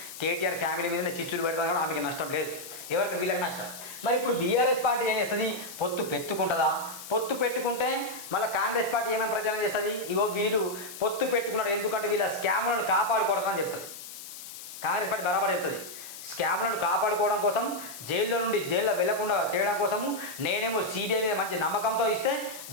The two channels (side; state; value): left; noise; hiss, 12 dB below the sound